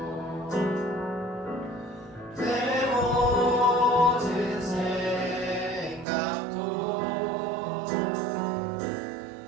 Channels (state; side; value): drops out; left; at 6.1 s